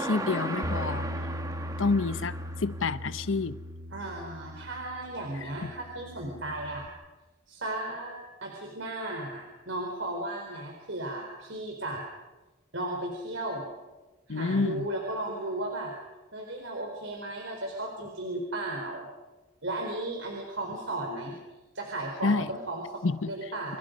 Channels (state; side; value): normal; both; correlation 0.24